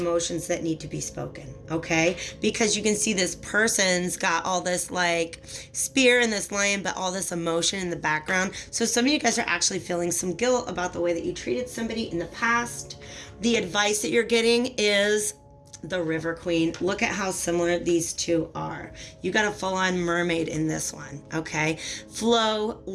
that need to be spoken, okay? Because you can see this person's got all this like spear and this lion, but all this emotion in the background. So some of you guys are actually feeling some guilt about the way that you treated somebody in the past. The advice that you're getting is the River Queen. Look at how similar these two are. You got a full-on mermaid in this one, okay? Flow,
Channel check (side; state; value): both; identical; correlation 1.00